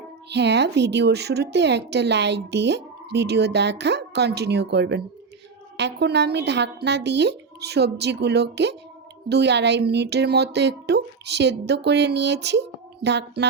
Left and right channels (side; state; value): left; quieter; 4.9 dB